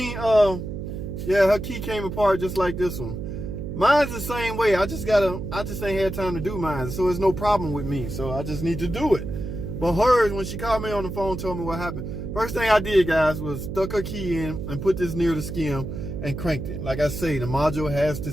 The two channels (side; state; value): right; noise; hum, 6 dB below the sound